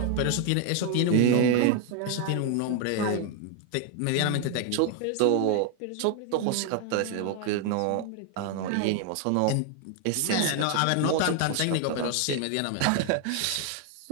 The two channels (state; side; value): different; both; correlation 0.00